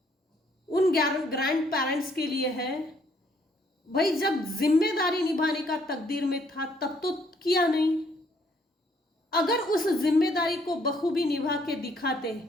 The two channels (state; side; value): normal; both; correlation 0.67